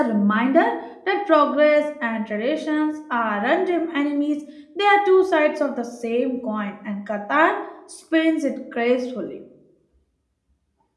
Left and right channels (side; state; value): both; identical; correlation 1.00